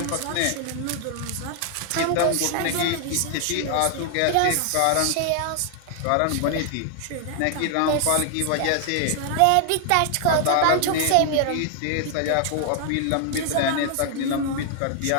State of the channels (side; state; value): both; different; correlation 0.00